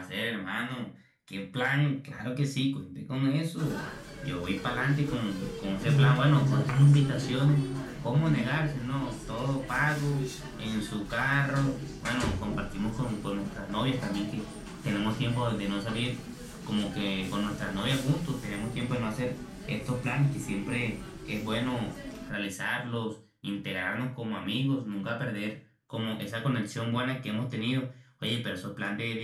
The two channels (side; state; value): both; identical; correlation 1.00